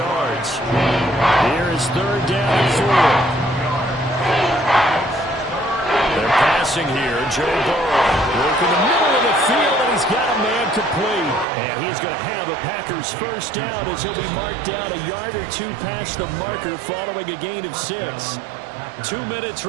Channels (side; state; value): left; drops out; at 11.5 s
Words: Here is 3rd down and 4. They're passing here. Joe Burrow working the middle of the field, and he's got a man complete. And he's going to have a Packers 1st down as he'll be marked down a yard or 2 past the marker following a gain of 6. 2 minutes